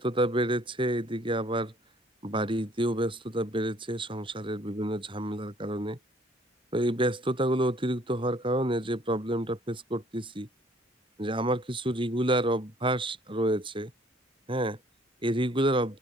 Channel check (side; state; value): both; normal; correlation 0.59